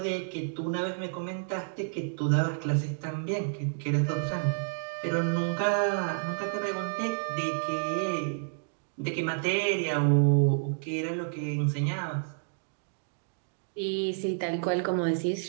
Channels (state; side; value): silent; left; digital silence